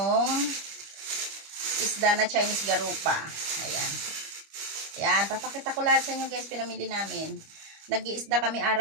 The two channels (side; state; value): left; late; 25 ms